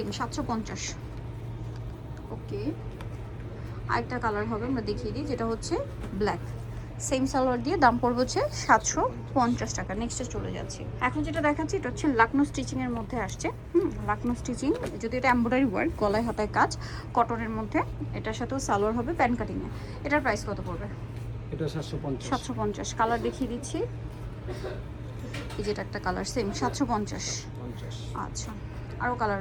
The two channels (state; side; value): identical; both; correlation 1.00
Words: 750। ওকে, আরেকটা কালার হবে, আমরা দেখিয়ে দিই, যেটা হচ্ছে ব্ল্যাক, সেম সালোয়ার দিয়ে, দাম পড়বে হচ্ছে 750 টাকা। নেক্সটে চলে যাচ্ছি। এখন যেটা দেখাচ্ছি, এটা হচ্ছে লাকনো স্টিচিংয়ের মধ্যে আসছে। লাকনো স্টিচিং, যদি এটা এমব্রয়ডারি ওয়ার্ক, গলায় হাতায় কাজ, কটনের মধ্যে। এটার সাথেও সালোয়ার হবে প্যান কাটিংয়ে। এটার প্রাইস কত পড়বে? এটা 750। কালার দেখিয়ে দিচ্ছি। এই যেটা একটা কালার, সেম 750। আচ্ছা, আরও কালার